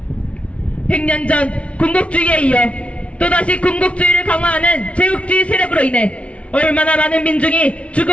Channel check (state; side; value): late; right; 0.062 ms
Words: 100년 전 군국주의에 이어 또다시 군국주의를 강화하는 제국주의 세력으로 인해 얼마나 많은 민중이